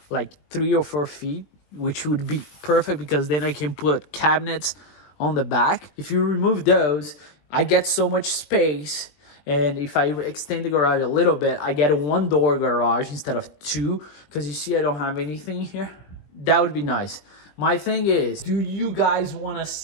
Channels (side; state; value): right; late; 20 ms